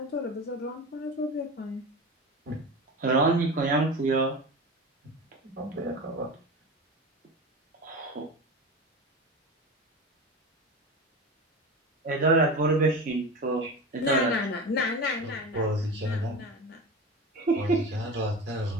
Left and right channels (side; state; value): both; normal; correlation 0.28